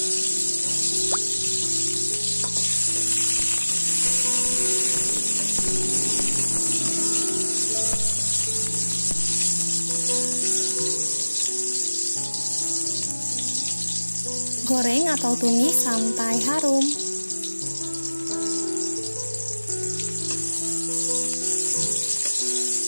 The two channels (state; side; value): inverted; both; correlation -1.00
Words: Goreng atau tumis sampai harum.